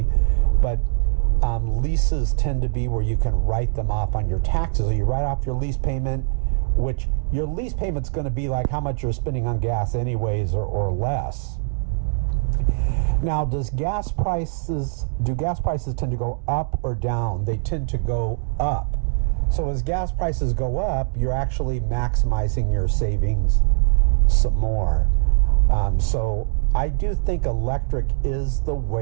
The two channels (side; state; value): left; silent; digital silence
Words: But leases tend to be where you can write them off on your taxes. So you write off your lease payment, which your lease payment's going to be like how much you're spending on gas anyways, or less. Now, do gas prices tend to go up or down? They tend to go up. So as gas prices go up, you're actually maximizing your savings some more. So I do think electric is the